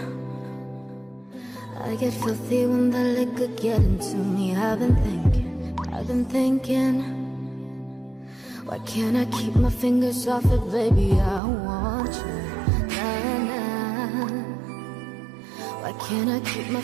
I get filthy when the liquor get into me. I've been thinking. Why can't I keep my fingers off it, baby? I want you, nah, nah. Why can't I keep my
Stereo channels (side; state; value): left; drops out; at 11.4 s